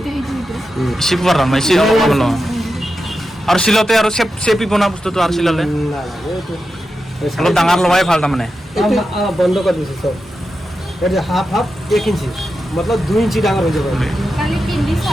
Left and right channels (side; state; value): both; normal; correlation 0.90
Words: एसे गुवार लानो एसे माबालो আৰু সিলতে আৰু চেপি বনা বস্তুটো আৰু সিলালে অলপ ডাঙৰ লগাই ভাল তাৰমানে বন্ধ কৰি দিছে সব এটা হাফ 1 ইঞ্চি मतलब 2 ইঞ্চি ডাঙৰ হৈ যাব খালি পিন্ধি